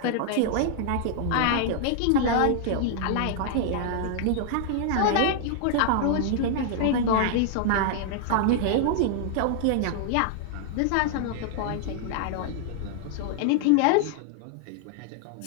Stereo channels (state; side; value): different; both; correlation 0.00